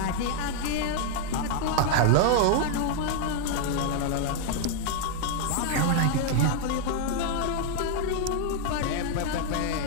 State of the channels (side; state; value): both; different; correlation 0.00